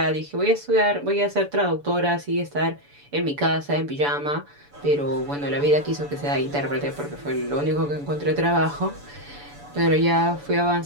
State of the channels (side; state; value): left; late; 7.0 ms